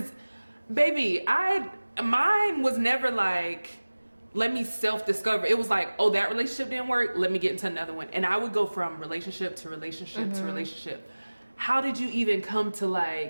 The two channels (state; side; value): inverted; both; correlation -1.00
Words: baby, mine was never like, let me self-discover. It was like, oh, that relationship didn't work, let me get into another one. And I would go from relationship to relationship to relationship. How did you even come to